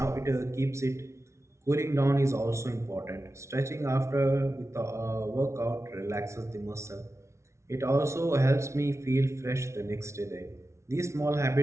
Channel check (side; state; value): left; late; 0.13 ms